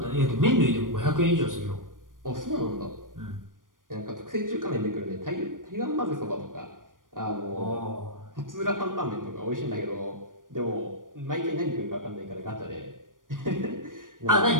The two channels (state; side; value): late; left; 0.90 ms